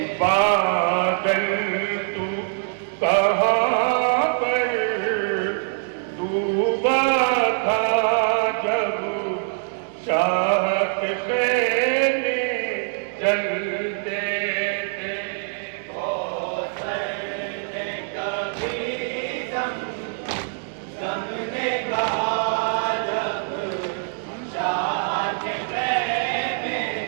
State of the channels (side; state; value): left; silent; 63 dB below the other